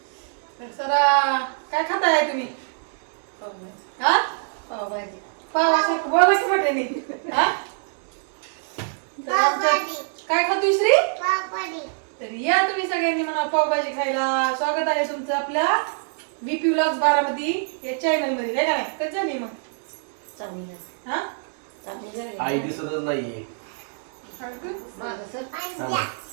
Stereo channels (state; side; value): silent; left; digital silence